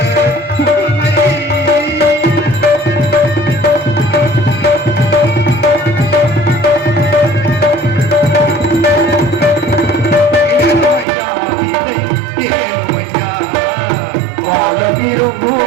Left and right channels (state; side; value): drops out; left; at 11.1 s